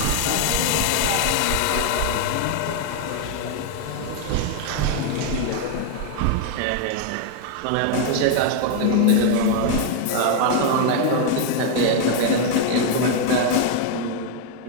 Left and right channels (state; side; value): different; both; correlation 0.00